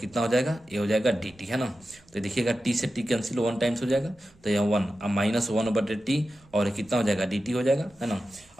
हो जाएगा, ए हो जाएगा डी टी, है ना। तो देखिएगा टी से टी कैंसिल 1 टाइम्स हो जाएगा, तो यहाँ 1, अब माइनस 1 बटे टी और कितना हो जाएगा, डी टी हो जाएगा, है ना।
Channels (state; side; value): noise; right; rumble, 29 dB below the sound